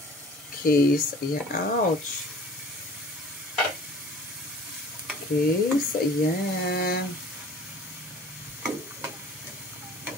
Okay, so ayan. Ouch. Okay, so ayan.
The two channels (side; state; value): both; normal; correlation 0.47